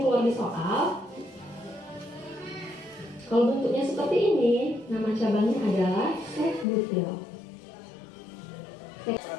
di soal. Kalau bentuknya seperti ini, nama cabangnya adalah sek-butil.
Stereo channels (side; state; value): right; drops out; at 6.7 s